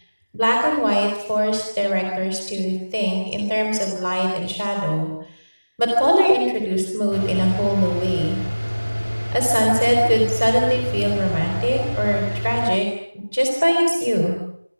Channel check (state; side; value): inverted; both; correlation -1.00